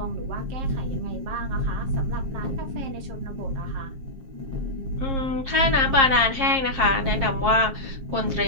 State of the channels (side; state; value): left; late; 7.5 ms